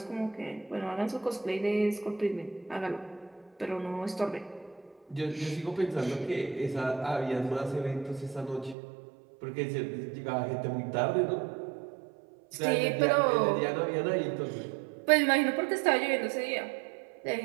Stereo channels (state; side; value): drops out; left; at 8.8 s